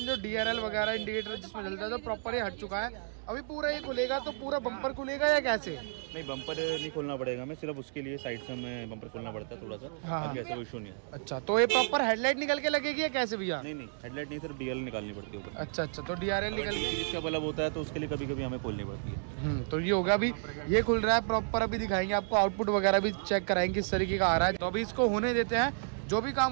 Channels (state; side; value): silent; left; digital silence